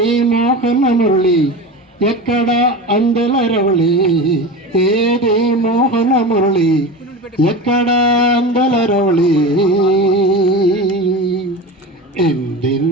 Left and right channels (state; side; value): normal; both; correlation 0.28